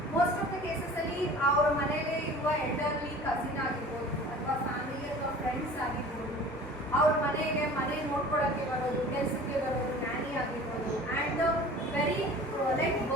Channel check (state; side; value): normal; both; correlation 0.43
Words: ಮೋಸ್ಟ್ ಆಫ್ ದ ಕೇಸಸಲ್ಲಿ ಅವ್ರ ಮನೆಯಲ್ಲೇ ಇರುವ ಎಲ್ಡರ್ಲಿ ಕಸಿನ್ ಆಗಿರ್ಬೋದು, ಅಥವಾ ಫ್ಯಾಮಿಲಿ ಅಥವಾ ಫ್ರೆಂಡ್ಸ್ ಆಗಿರ್ಬೋದು, ಅವ್ರ ಮನೆ ನೋಡ್ಕೊಳ್ಳೋಕ್ಕೆ ಬರೋದು, ಕೆಲಸಕ್ಕೆ ಬರೋದು, ನ್ಯಾನಿ ಆಗಿರ್ಬೋದು. And very like